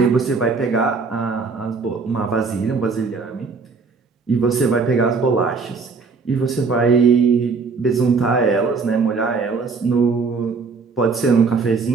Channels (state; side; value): quieter; left; 4.7 dB